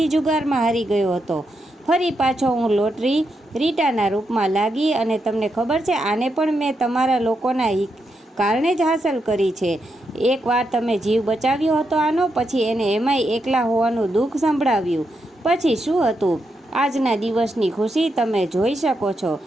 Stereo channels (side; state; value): both; normal; correlation 0.83